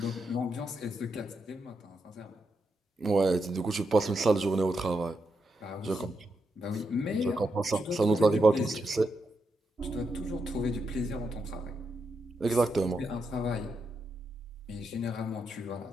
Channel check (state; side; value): normal; both; correlation 0.83